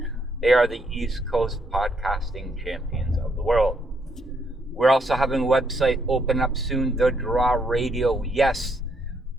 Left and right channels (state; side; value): normal; both; correlation 0.74